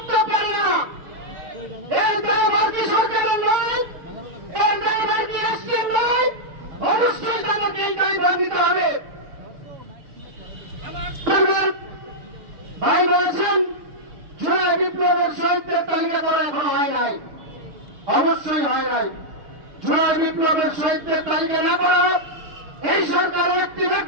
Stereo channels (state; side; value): late; left; 6.9 ms